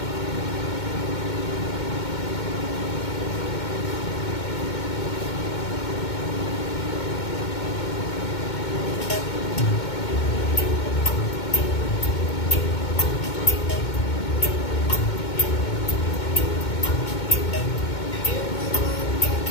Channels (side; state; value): right; late; 2.2 ms